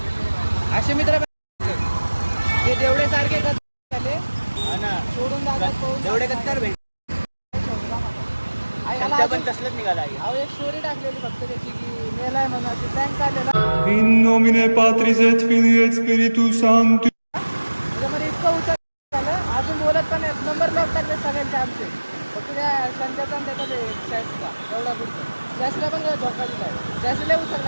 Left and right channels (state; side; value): inverted; both; correlation -1.00